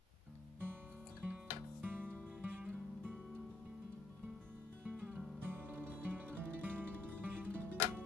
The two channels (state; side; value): quieter; right; 3.0 dB